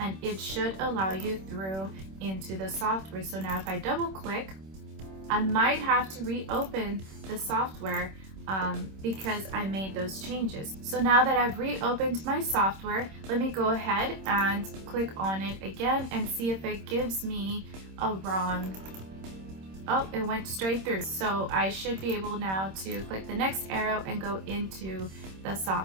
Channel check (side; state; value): left; late; 26 ms